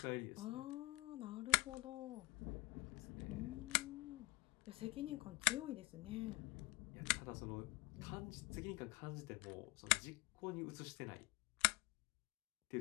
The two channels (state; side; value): quieter; right; 22.3 dB